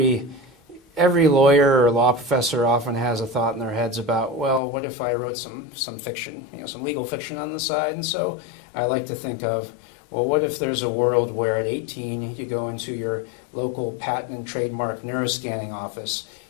lawyer or law professor often has a thought in their heads about, well, what if I wrote some fiction, some legal fiction on the side? And so I like to think of, well, what if there's a world where at 18 you go into your local patent and trademark neuroscanning office,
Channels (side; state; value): right; drops out; at 4.6 s